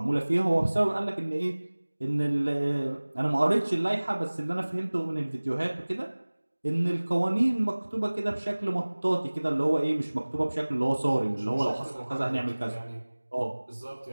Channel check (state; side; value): inverted; both; correlation -1.00